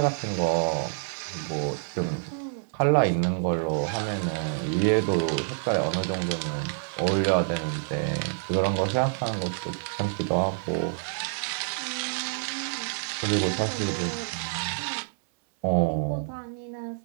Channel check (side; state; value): left; silent; 60 dB below the other